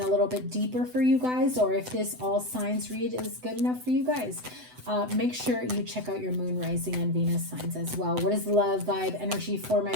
a little bit deeper for you guys, or if this all signs read is good enough for you guys. Make sure you check out your moon, rising, and Venus signs as well. What is love vibe energy for my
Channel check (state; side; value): late; left; 8.0 ms